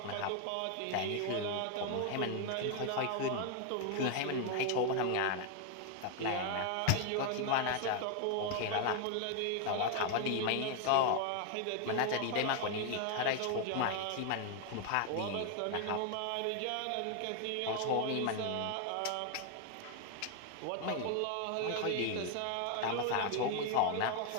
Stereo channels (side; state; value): both; different; correlation 0.00